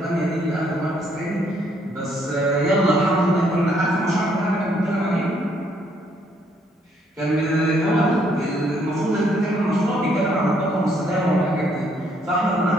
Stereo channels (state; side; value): normal; both; correlation 0.69